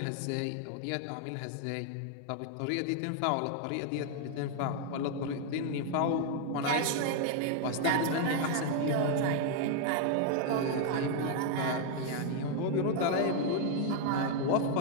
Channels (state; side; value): different; both; correlation 0.00